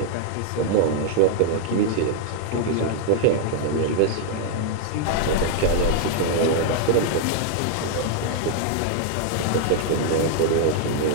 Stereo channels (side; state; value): both; different; correlation 0.00